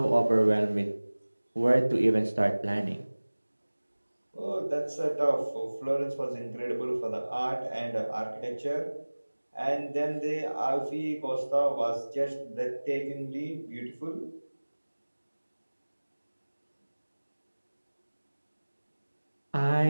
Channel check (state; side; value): inverted; both; correlation -1.00